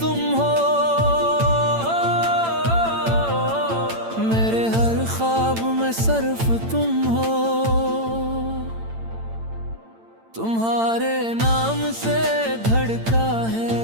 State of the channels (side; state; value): left; late; 8.9 ms